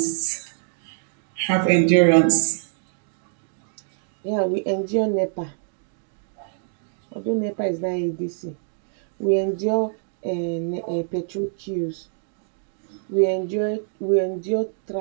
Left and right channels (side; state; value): left; silent; digital silence